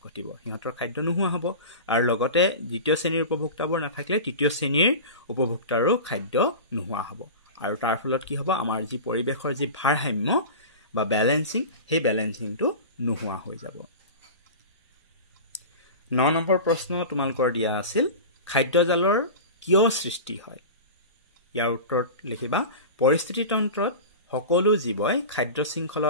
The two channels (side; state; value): both; inverted; correlation -0.30